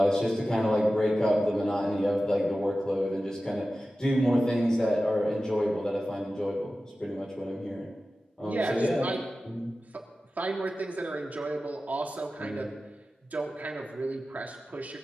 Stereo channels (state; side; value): normal; both; correlation 0.95